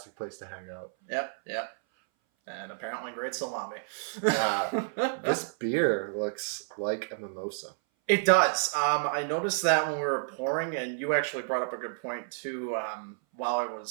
place to hang out. Yep. And apparently great salami. This beer looks like a mimosa. It does. I noticed that when we were pouring, and you actually brought up a good point too. While I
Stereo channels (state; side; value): silent; left; 57 dB below the other